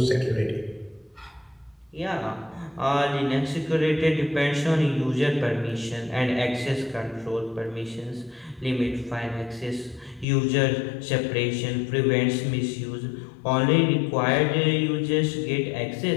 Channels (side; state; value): right; drops out; at 10.2 s